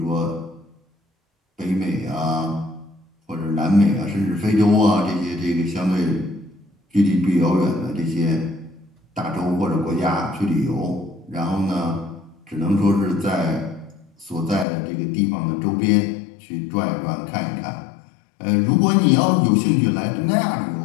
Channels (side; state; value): right; drops out; at 14.7 s